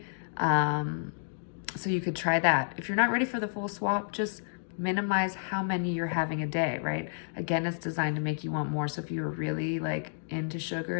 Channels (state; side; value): silent; right; digital silence